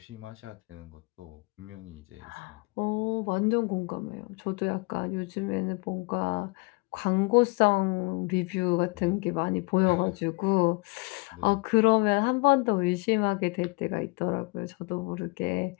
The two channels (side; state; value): right; quieter; 28.4 dB